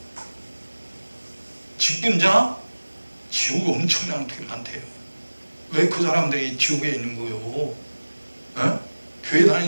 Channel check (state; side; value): inverted; both; correlation -1.00